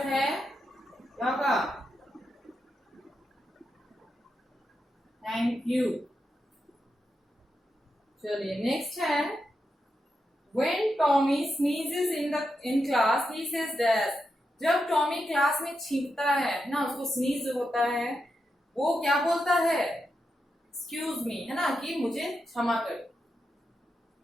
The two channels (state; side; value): normal; both; correlation 0.86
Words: है क्या होगा, थैंक यू। चलिए नेक्स्ट है When Tommy sneezes in class, he says dash. जब टॉमी क्लास में छींकता है ना, उसको स्नीज होता है, वो क्या बोलता है, एक्सक्यूज मी, है ना, कि मुझे क्षमा करो।